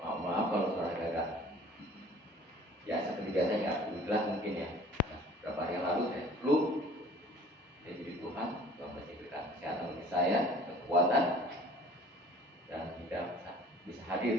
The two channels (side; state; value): both; normal; correlation 0.49